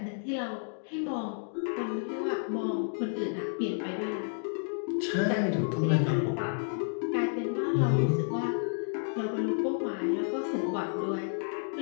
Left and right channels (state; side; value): silent; right; digital silence